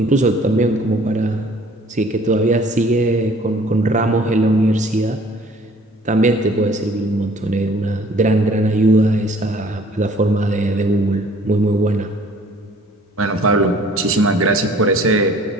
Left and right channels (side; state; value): both; normal; correlation 0.53